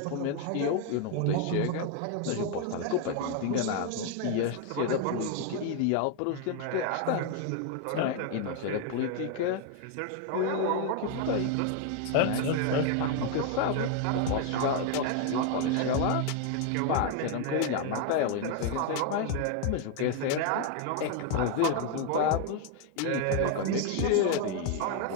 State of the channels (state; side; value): different; both; correlation 0.01